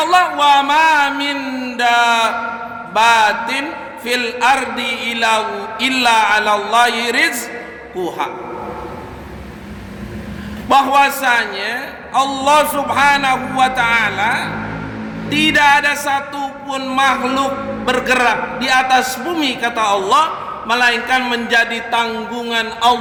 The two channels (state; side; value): identical; both; correlation 1.00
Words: Allah, wa ma min dabbatin fil ardi illa 'alallahi rizquha. Bahwasanya Allah Subhanahu wa taala tidak ada satupun makhluk bergerak di atas bumi, kata Allah, melainkan menjadi tanggungan